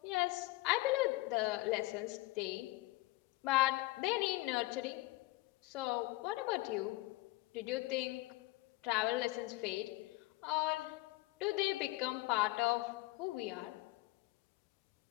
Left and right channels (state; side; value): quieter; right; 20.4 dB